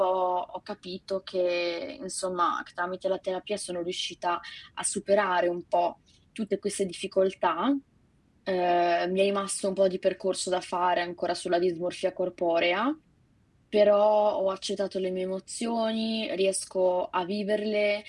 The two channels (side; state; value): both; identical; correlation 1.00